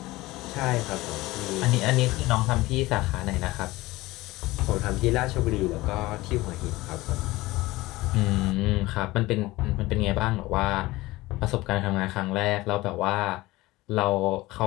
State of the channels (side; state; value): right; quieter; 19.3 dB